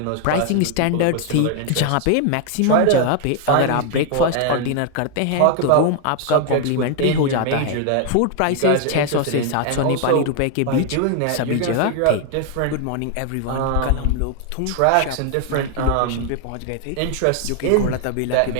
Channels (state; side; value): different; both; correlation 0.00